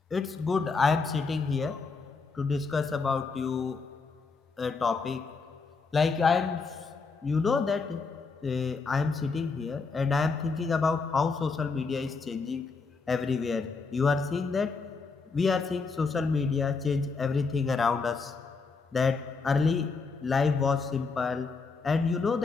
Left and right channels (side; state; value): right; quieter; 4.5 dB